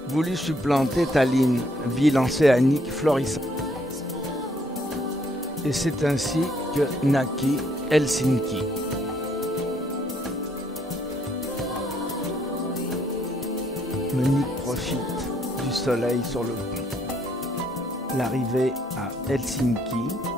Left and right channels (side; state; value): both; normal; correlation 0.69